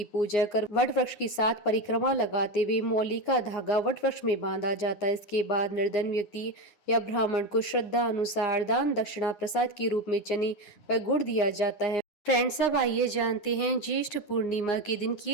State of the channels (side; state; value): right; late; 9.7 ms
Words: पूजा कर वट वृक्ष की 7 परिक्रमा लगाते हुए मौली का धागा वट वृक्ष में बांधा जाता है। इसके बाद निर्धन व्यक्ति या ब्राह्मण को श्रद्धा अनुसार दान दक्षिणा प्रसाद के रूप में चने व गुड़ दिया जाता है। फ्रेंड्स, अब आइए जानते हैं ज्येष्ठ पूर्णिमा के दिन